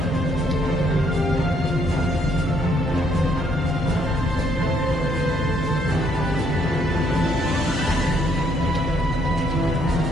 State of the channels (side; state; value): left; noise; hum, 17 dB below the sound